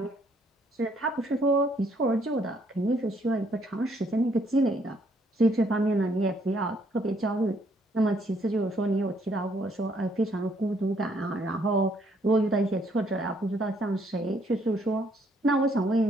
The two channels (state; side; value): normal; both; correlation 0.68